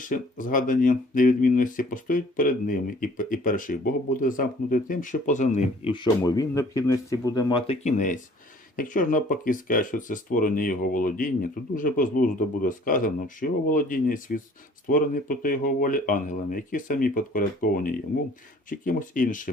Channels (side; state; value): both; normal; correlation 0.54